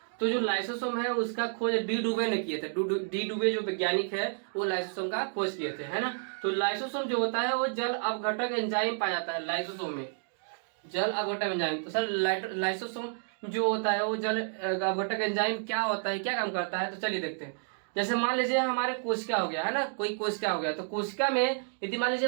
तो जो लाइसोसोम है उसका खोज डी डुबे ने किए थे। डी डुबे जो वैज्ञानिक है वो लाइसोसोम का खोज किए थे, है ना। तो लाइसोसोम जो होता है वो जल अपघटक एंजाइम पाया जाता है लाइसोसोम में, जल अपघटक एंजाइम। तो सर लाइसोसोम जो होता है वो जल अपघटक एंजाइम क्या होता है, क्या काम करता है, तो चलिए देखते हैं। जैसे मान लीजिए हमारे कोशिका हो गया, है ना, कोई कोशिका हो गया, तो कोशिका में यदि मान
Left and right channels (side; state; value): left; silent; digital silence